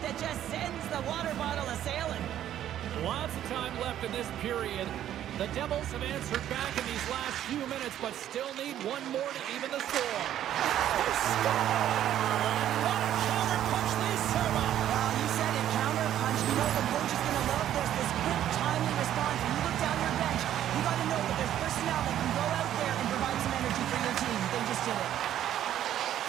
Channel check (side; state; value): left; quieter; 11.4 dB